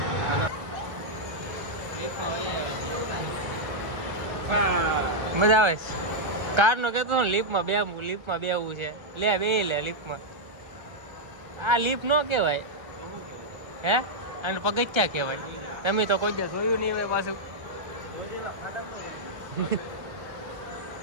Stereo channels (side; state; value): left; late; 1.3 ms